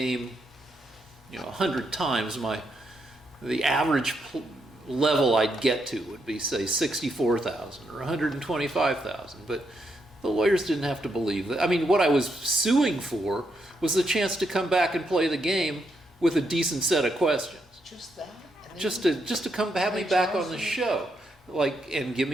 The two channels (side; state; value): both; normal; correlation 0.80